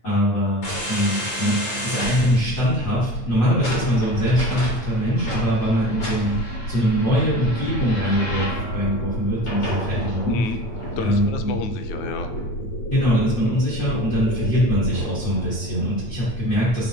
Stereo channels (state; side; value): late; right; 8.8 ms